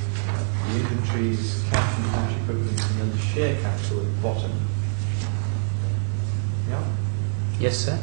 inventories, cash and cash equivalents, and then the share capital at the bottom. Yeah. Yes, sir.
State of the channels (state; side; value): silent; left; digital silence